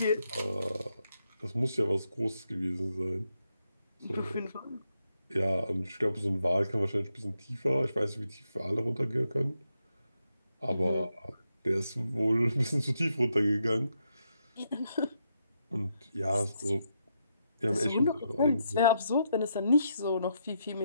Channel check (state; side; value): inverted; both; correlation -0.81